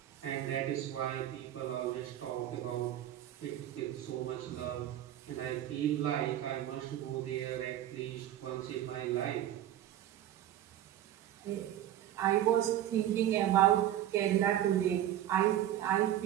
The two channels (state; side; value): quieter; left; 12.1 dB